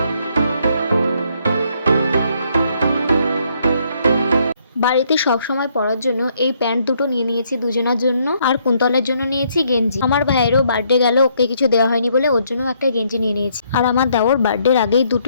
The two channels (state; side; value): inverted; both; correlation -0.70